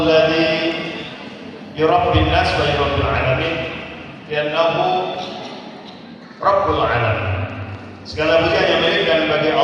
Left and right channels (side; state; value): both; identical; correlation 1.00